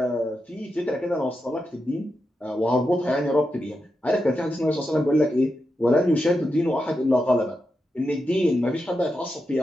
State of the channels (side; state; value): both; normal; correlation 0.87